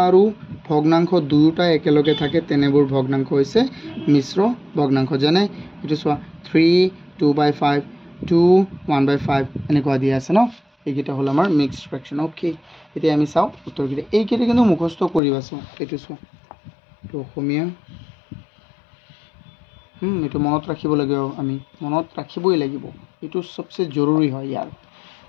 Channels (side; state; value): right; drops out; at 15.2 s